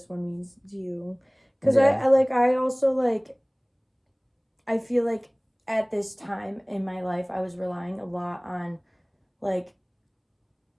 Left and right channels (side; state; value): both; identical; correlation 1.00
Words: one means to you. Because I also, like, I feel like at this time in my life, I was relying a lot on, like,